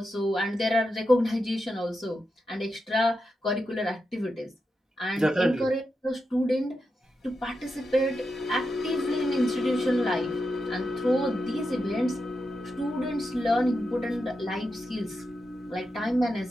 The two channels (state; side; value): normal; both; correlation 0.88